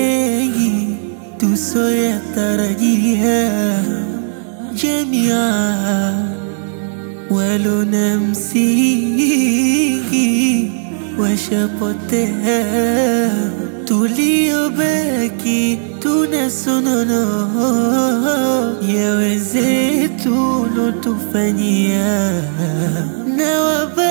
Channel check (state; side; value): silent; left; 60 dB below the other